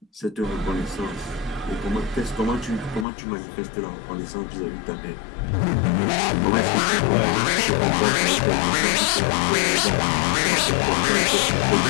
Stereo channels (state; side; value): drops out; right; at 3.1 s